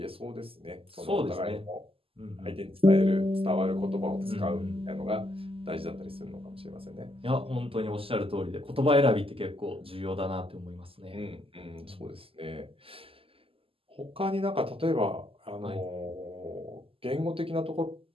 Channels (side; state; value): left; late; 0.26 ms